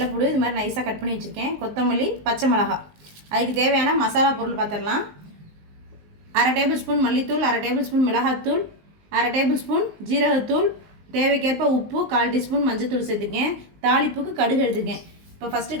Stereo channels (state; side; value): late; left; 19 ms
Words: இது மாதிரி நைஸாக கட் பண்ணி வச்சுருக்கேன். கொத்தமல்லி, பச்சை மிளகாய். அதுக்கு தேவையான மசாலா பொருள் பார்த்துடலாம். 1/2 டேபிள் ஸ்பூன் மல்லித்தூள், 1/2 டேபிள் ஸ்பூன் மிளகாத்தூள், 1/2 டேபிள் ஸ்பூன் ஜீரகத்தூள், தேவைக்கேற்ப உப்பு, 1/4 டீஸ்பூன் மஞ்சத்தூள் சேர்த்துக்கேன். தாளிப்புக்கு கடுகு எடுத்துக்கேன். இப்போ ஃபஸ்ட்டு